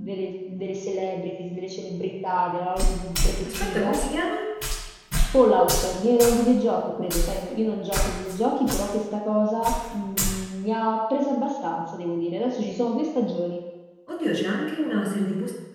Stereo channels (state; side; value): identical; both; correlation 1.00